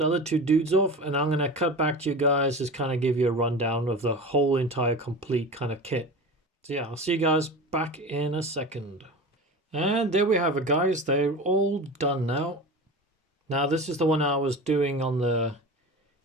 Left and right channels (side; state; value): both; normal; correlation 0.31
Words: other two dudes off, and I'm going to cut back to you guys, just kind of give you a rundown of the whole entire complete kind of kit. So yeah, I'll see you guys back in a second. And there we have it, guys. They're all done now. Now this is the one I was doing on the